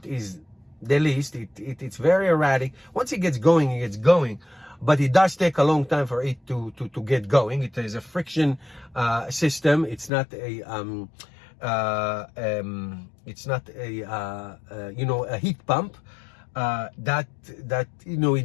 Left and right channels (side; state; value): right; drops out; at 10.1 s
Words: is the least. It's very erratic. Once it gets going, it gets going. But it does take a long time for it to get going. It is a friction system. It's not a a heat pump that it